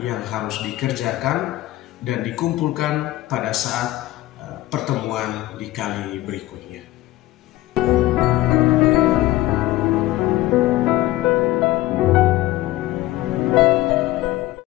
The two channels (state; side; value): quieter; right; 16.8 dB